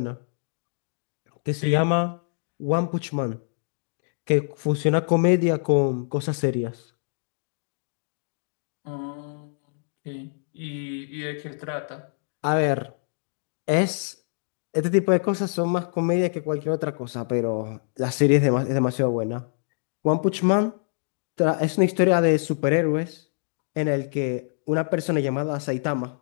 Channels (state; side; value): silent; right; digital silence